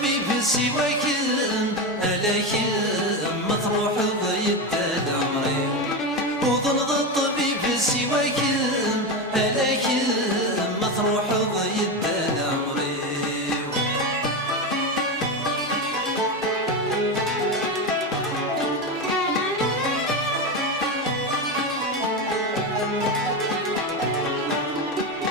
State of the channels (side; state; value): both; normal; correlation 0.16